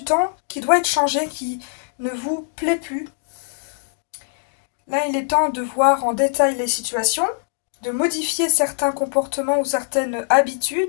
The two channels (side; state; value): right; silent; digital silence